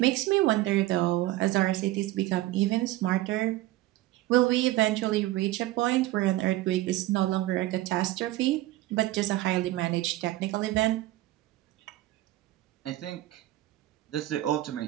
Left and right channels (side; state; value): left; quieter; 16.4 dB